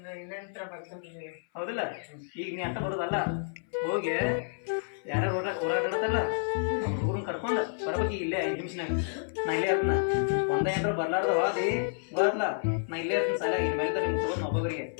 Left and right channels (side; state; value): right; silent; 58 dB below the other